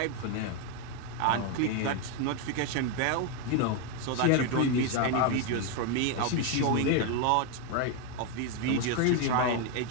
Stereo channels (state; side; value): different; both; correlation 0.01